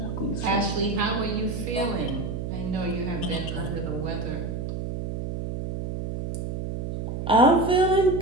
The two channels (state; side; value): noise; right; hum, 5 dB below the sound